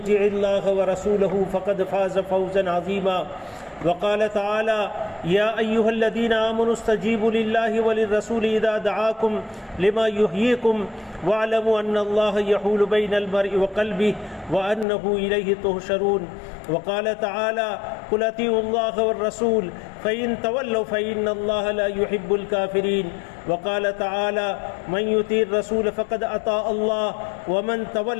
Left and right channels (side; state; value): right; drops out; at 14.9 s